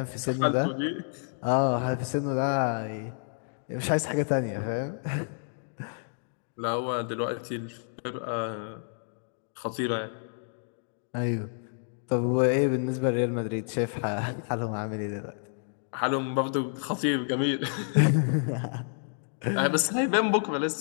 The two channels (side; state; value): right; silent; digital silence